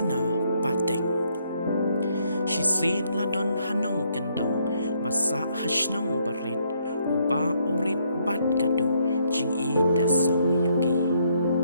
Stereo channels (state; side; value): inverted; both; correlation -0.72